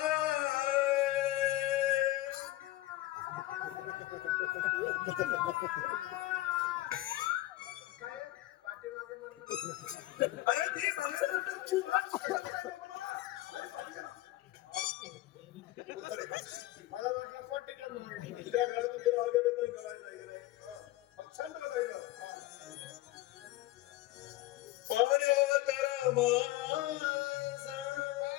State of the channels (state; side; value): quieter; right; 16.5 dB